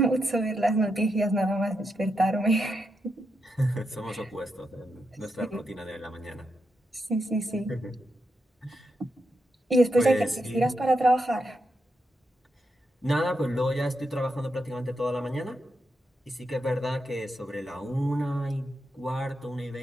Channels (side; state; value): both; normal; correlation 0.84